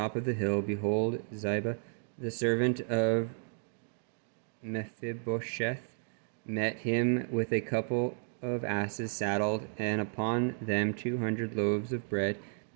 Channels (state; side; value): silent; left; 56 dB below the other